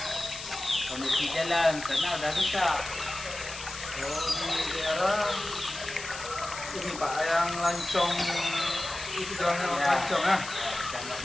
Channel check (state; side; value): noise; left; hiss, 10 dB below the sound